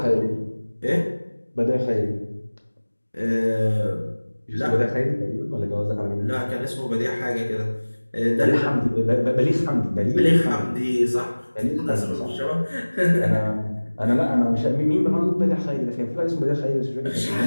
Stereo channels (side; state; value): both; inverted; correlation -1.00